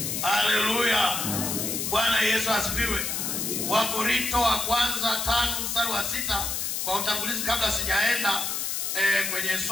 Haleluya. Bwana Yesu asifiwe. Wakorintho wa kwanza 5 mstari wa 6, kwa utangulizi kabla sijaenda kwenye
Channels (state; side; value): noise; left; hiss, 1 dB below the sound